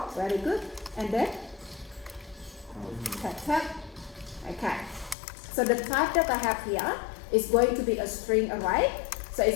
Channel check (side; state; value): right; drops out; at 5.2 s